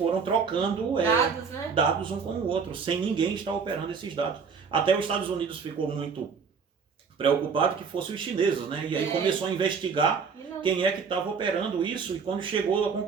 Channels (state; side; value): quieter; left; 5.8 dB